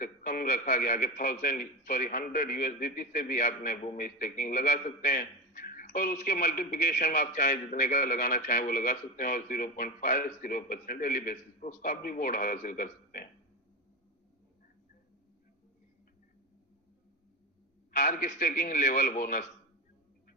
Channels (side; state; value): both; normal; correlation 0.20